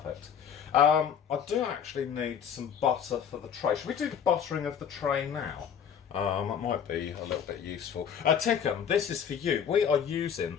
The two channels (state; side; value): quieter; right; 8.0 dB